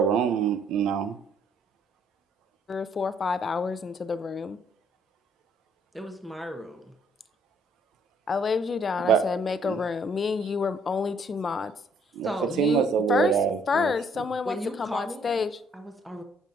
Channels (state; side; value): normal; both; correlation 0.65